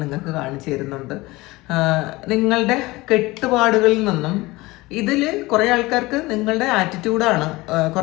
നിങ്ങൾക്ക് കാണിച്ചു തരുന്നുണ്ട്. നിങ്ങളുടെ കെട്ടുപാടുകളിൽ നിന്നും ഇതിൽ കുറേ ആൾക്കാർക്ക് നിങ്ങളുടെ ആറ്റിറ്റ്യൂഡാണ്,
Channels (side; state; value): right; quieter; 21.0 dB